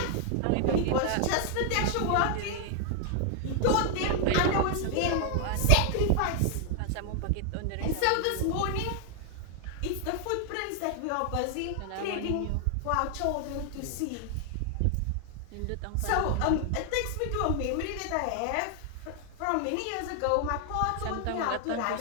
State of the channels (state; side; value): different; both; correlation 0.00